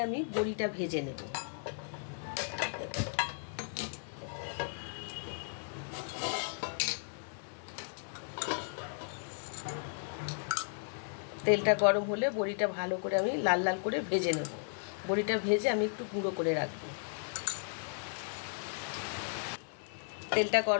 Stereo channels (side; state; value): right; silent; 54 dB below the other